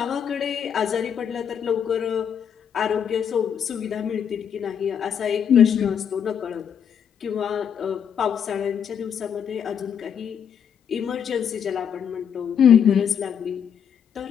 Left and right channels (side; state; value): right; quieter; 8.0 dB